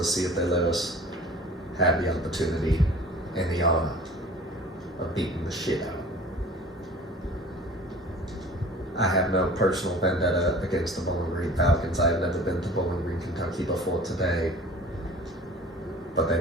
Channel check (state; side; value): normal; both; correlation 0.45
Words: see if they let us have the opportunity and the honor of beating the shit out. I have no personal vendetta against the Bowling Green Falcons. I have never been to Bowling Green, Kentucky before today, but they